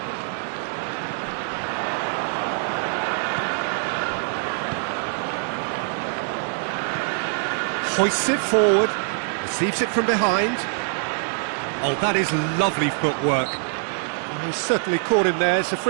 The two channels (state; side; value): silent; left; 61 dB below the other